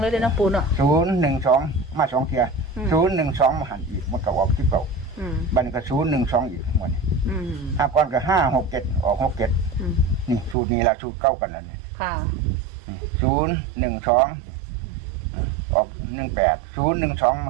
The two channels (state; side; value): drops out; left; at 10.6 s